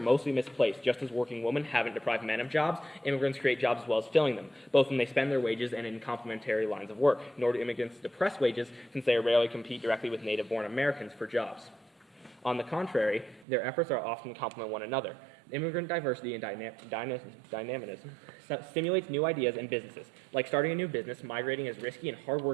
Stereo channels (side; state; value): left; drops out; at 13.5 s